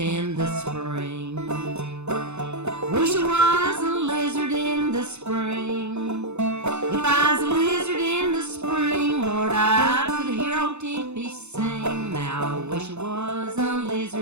the spring. Wish it was a lizard in the spring. If I was a lizard in the spring, Lord, I could hear old Tempy sing. Now I wish it was a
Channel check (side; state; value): left; late; 0.81 ms